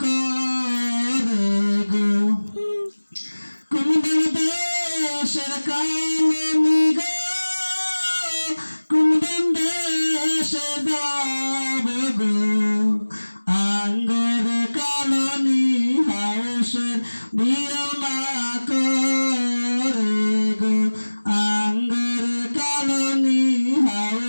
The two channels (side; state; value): both; inverted; correlation -1.00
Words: করে গো কুন্দন দেশের কালনি গো কুন্দন দেশে যাব গো আঙ্গুর কালনি হাউসের বিয়ামা করে গো আঙ্গুর কালনি